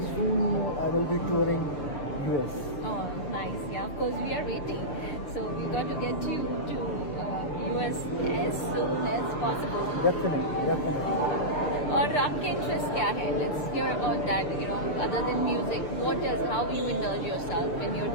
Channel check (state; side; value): late; right; 6.8 ms